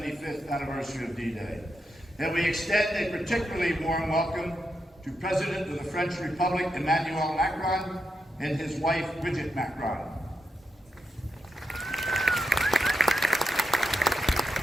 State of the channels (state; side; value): normal; both; correlation 0.84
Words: anniversary of D-Day. And we extend a particularly warm welcome to President of the French Republic, Emmanuel Macron, and his wife, Brigitte Macron.